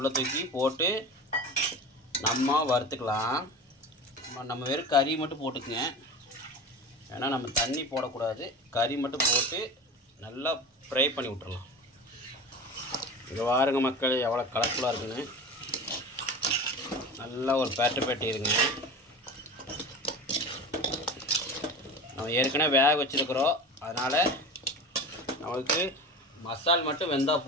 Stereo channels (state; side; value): normal; both; correlation 0.32